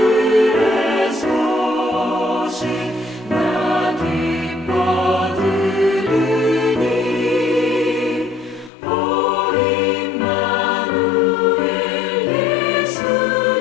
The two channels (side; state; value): right; drops out; at 8.7 s